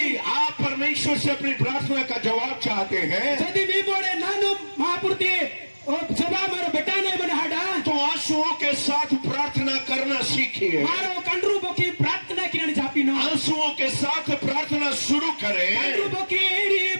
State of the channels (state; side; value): inverted; both; correlation -1.00